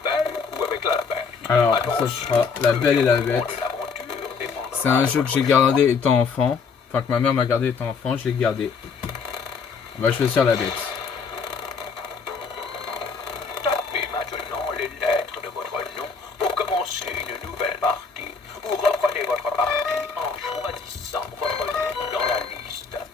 ou avec la bête. Alors, ça sera La Belle et la Bête. C'est un jeu que j'ai gardé étant enfant. Enfin, que ma mère m'a gardé étant enfant. Je l'ai gardé. On va choisir La Bête. Tapez maintenant les lettres de votre nom pour commencer une nouvelle partie ou reprenez votre partie en choisissant votre nom dans la liste.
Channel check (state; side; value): quieter; right; 5.4 dB